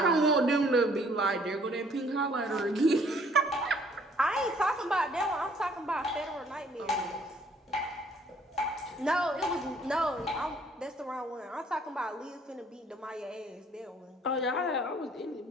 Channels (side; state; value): both; normal; correlation 0.61